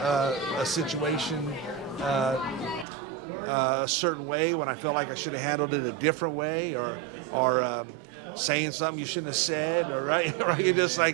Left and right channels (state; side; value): drops out; left; at 2.9 s